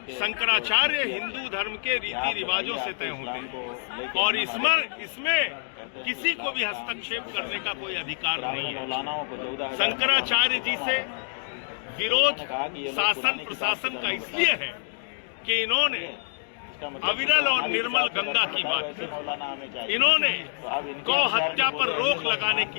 शंकराचार्य हिंदू धर्म के रीति रिवाजों से तय होते हैं और इसमें किसी को भी हस्तक्षेप करने का कोई अधिकार नहीं है। शंकराचार्य जी से विरोध शासन प्रशासन का इसलिए है कि इन्होंने अविरल और निर्मल गंगा की बात की, इन्होंने गौ हत्या पर रोक लगाने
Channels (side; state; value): right; silent; digital silence